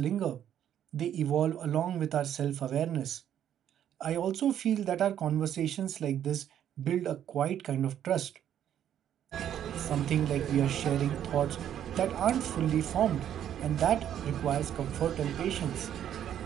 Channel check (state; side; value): quieter; left; 10.2 dB